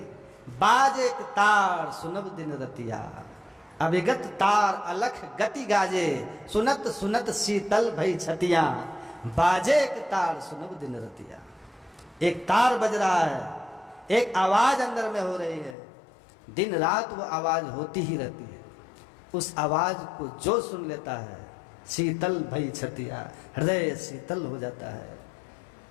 बाजे तार सुनब दिन रतिया, अभिगत तार अलख गति गाजे, सुनत सुनत शीतल भई छतिया, बाजे एक तार सुनब दिन रतिया। एक तार बज रहा है, एक आवाज अंदर में हो रही है, दिन रात वो आवाज होती ही रहती है। उस आवाज को जो सुन लेता है, शीतल भई छतिया, हृदय शीतल हो जाता है।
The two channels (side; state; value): right; drops out; at 15.8 s